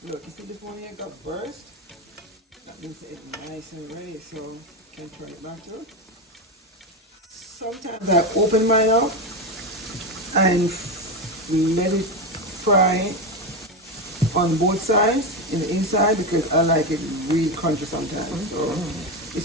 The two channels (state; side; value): normal; both; correlation 0.14